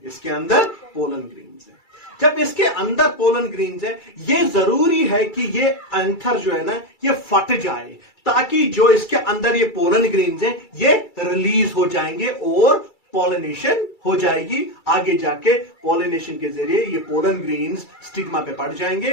इसके अंदर पोलन ग्रेन्स है। जब इसके अंदर पोलन ग्रेन्स है, ये जरूरी है कि ये एंथर जो है ना, ये फट जाए, ताकि जो इसके अंदर ये पोलन ग्रेन्स है, ये रिलीज हो जाएंगे और पॉलिनेशन हो जाएगी। आगे जाके पॉलिनेशन के जरिए ये पोलन ग्रेन्स स्टिग्मा पे पड़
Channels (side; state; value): right; late; 2.3 ms